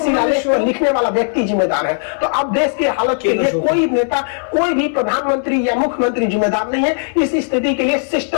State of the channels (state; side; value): silent; right; 68 dB below the other